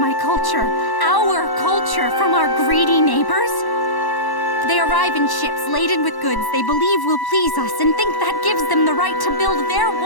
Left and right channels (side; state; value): right; late; 1.1 ms